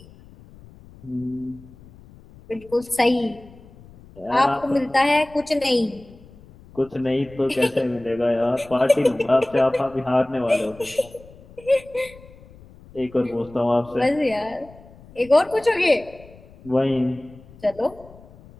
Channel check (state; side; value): noise; left; rumble, 22 dB below the sound